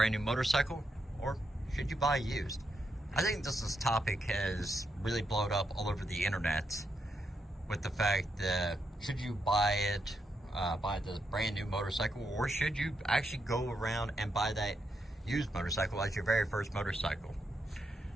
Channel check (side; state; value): both; normal; correlation 0.82